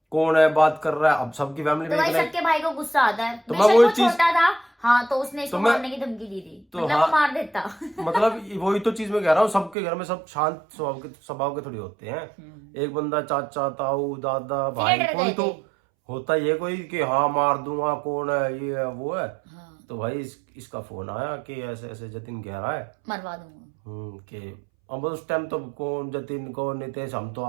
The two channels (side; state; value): left; drops out; at 9.8 s